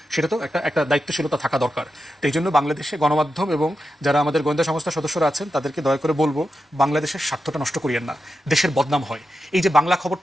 সেটা তো একটা দায়িত্বশীলতা থাকা দরকার। তো এই জন্য বাংলাদেশে গণমাধ্যম এবং যারা আমাদের গোয়েন্দা সংস্থার সদস্যরা আছেন, তাদেরকে দয়া করে বলবো, বাংলাদেশের স্বার্থটা নষ্ট করিয়েন না, দেশের বদনাম হয়। এই যে বাংলা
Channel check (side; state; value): both; normal; correlation 0.89